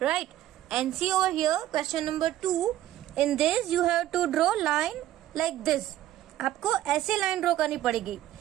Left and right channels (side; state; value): left; quieter; 13.5 dB